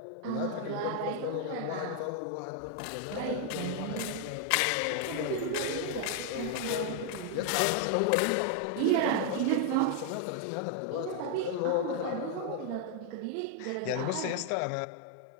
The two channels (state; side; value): different; both; correlation 0.00